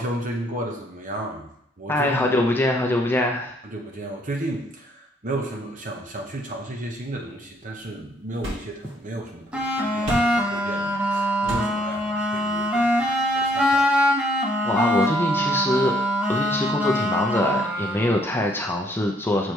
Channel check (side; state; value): both; normal; correlation 0.66